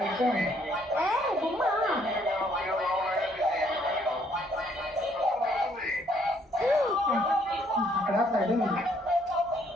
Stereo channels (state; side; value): normal; both; correlation 0.66